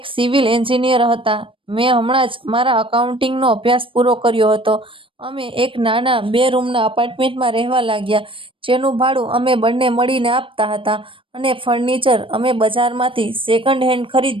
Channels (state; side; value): late; left; 0.25 ms